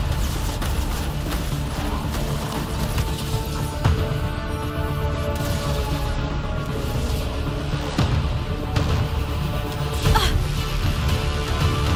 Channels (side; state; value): both; identical; correlation 1.00